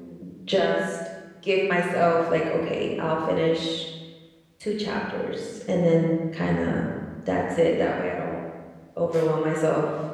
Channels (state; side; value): identical; both; correlation 1.00